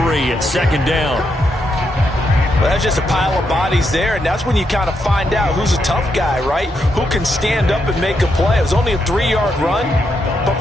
at 2nd down. Well, that's just a pile of bodies there, and that's when you kind of find out who's a tough guy, right? Who can stand up and make a play. It was only a 3-yard run, but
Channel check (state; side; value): normal; both; correlation 0.81